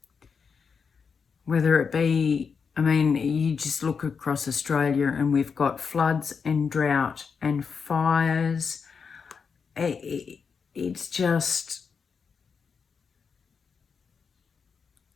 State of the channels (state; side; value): quieter; right; 5.8 dB